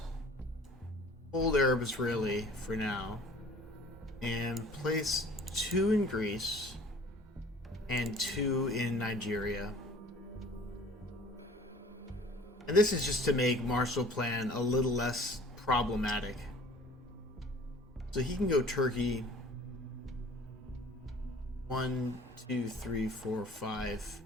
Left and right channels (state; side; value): normal; both; correlation 0.49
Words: hold Arab Israeli for now and place 2 in Greece and 2 in Nigeria. And this is just to make Marshall Plan a little less problematic. So he can go Turkey 1, 2, 3, 4, 5.